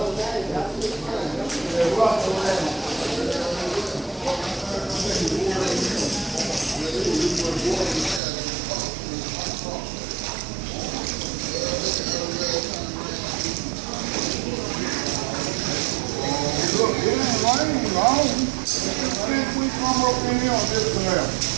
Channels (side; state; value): left; drops out; at 8.2 s